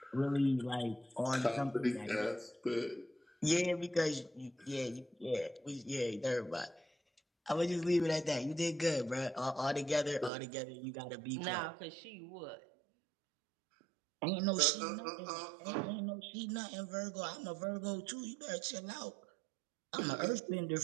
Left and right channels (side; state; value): left; drops out; at 10.3 s